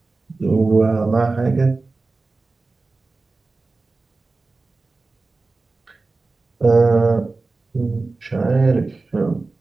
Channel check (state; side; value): quieter; left; 3.6 dB